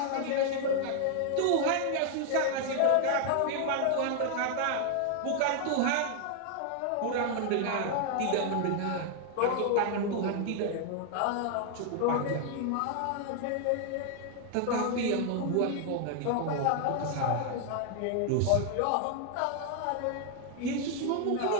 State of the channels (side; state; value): both; different; correlation 0.00